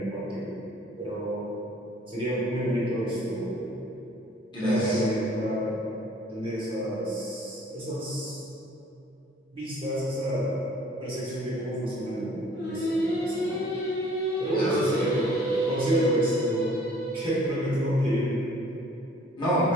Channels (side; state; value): both; normal; correlation 0.54